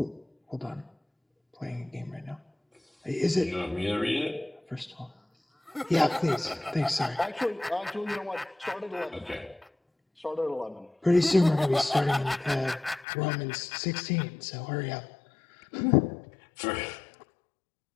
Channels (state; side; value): drops out; right; at 13.1 s